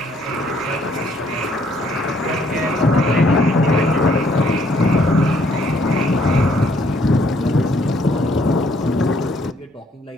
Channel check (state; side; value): normal; both; correlation 0.66